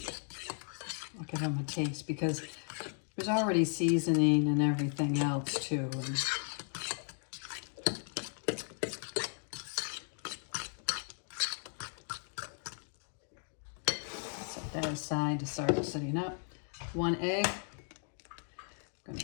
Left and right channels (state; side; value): silent; right; 54 dB below the other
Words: I'll give them a taste because there's already seasoning and everything else too. That aside to start setting up. 1 egg. I'm going